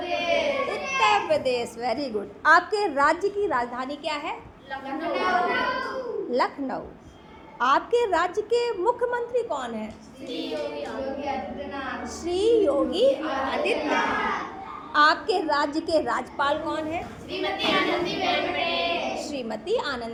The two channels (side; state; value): both; identical; correlation 1.00